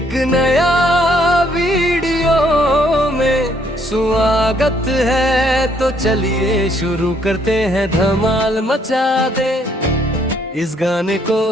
नया वीडियो में स्वागत है, तो चलिए शुरू करते हैं। धमाल मचा दे इस गाने को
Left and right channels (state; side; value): normal; both; correlation 0.68